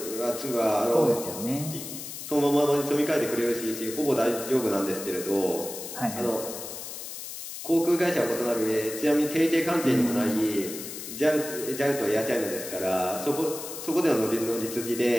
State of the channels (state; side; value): noise; left; hiss, 9 dB below the sound